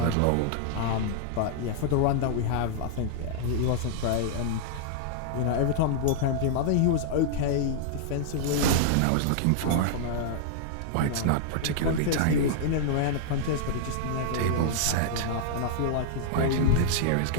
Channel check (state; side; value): different; both; correlation -0.01